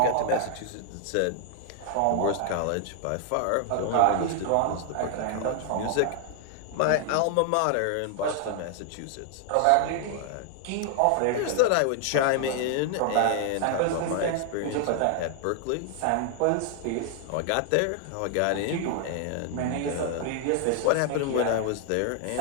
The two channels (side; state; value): both; different; correlation 0.00